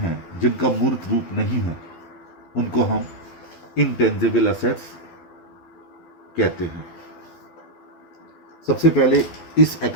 जिनका मूर्त रूप नहीं है, उनको हम इंटेंजिबल असेट्स कहते हैं। सबसे पहले इस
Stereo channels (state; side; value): late; right; 12 ms